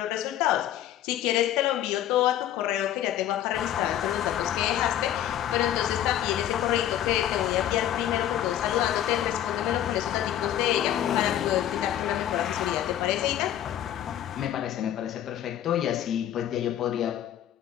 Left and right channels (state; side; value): quieter; right; 11.5 dB